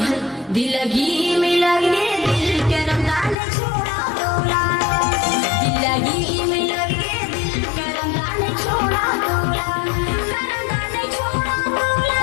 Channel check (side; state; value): right; drops out; at 3.4 s